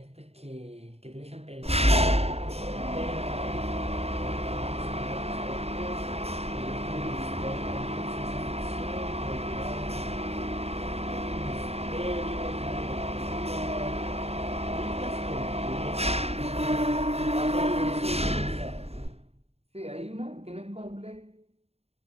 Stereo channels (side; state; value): left; late; 0.30 ms